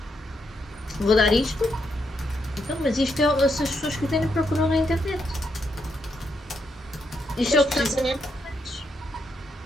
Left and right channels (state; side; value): normal; both; correlation 0.79